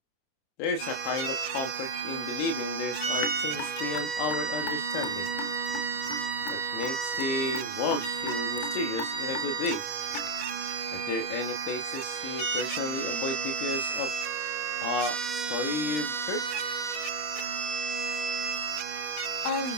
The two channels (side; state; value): right; late; 27 ms